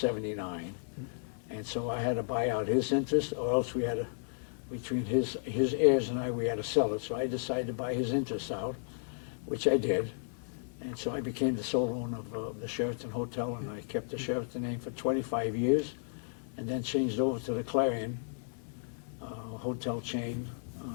And so I had to buy out his interest, or else we had to, between his heirs and I, we had to sell it. So I decided to buy his interest out, which I did. And so I became the sole owner of the Sheraton Hotel, and I kept the Sheraton name for 25 years, and then changed over to the Clarion hotel chain,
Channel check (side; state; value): right; silent; 55 dB below the other